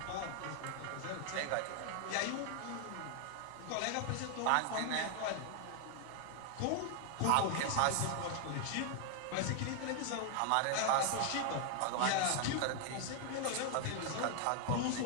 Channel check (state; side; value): different; both; correlation 0.00